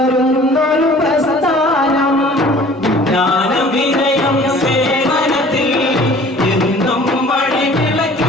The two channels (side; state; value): both; normal; correlation 0.49